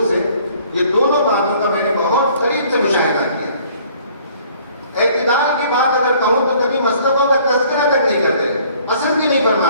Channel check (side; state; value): both; inverted; correlation -0.57